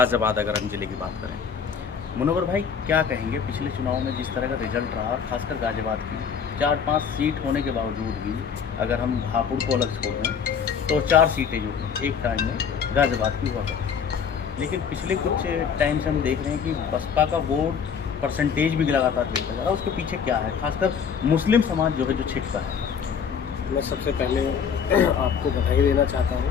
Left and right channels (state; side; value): quieter; right; 6.9 dB